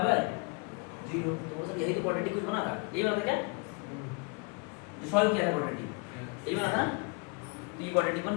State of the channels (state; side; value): quieter; right; 29.9 dB